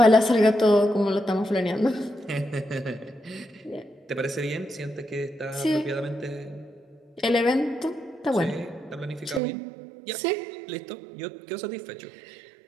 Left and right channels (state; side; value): drops out; left; at 9.4 s